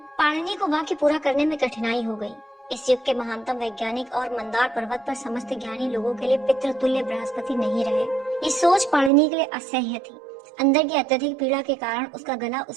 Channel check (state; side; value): drops out; left; at 9.1 s